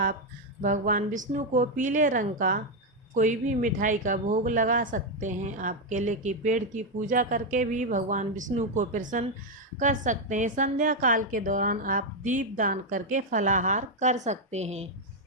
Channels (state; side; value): normal; both; correlation 0.03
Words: भगवान विष्णु को पीले रंग का कोई भी मिठाई का भोग लगा सकते हैं। आप केले के पेड़ की पूजा करके भी भगवान विष्णु को प्रसन्न कर सकते हैं। संध्या काल के दौरान आप दीप दान करके फलाहार कर सकते हैं।